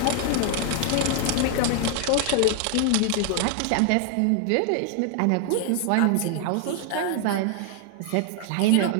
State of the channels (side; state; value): both; different; correlation 0.00